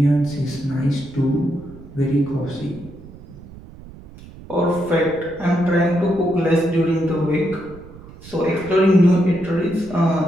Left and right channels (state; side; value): noise; right; rumble, 18 dB below the sound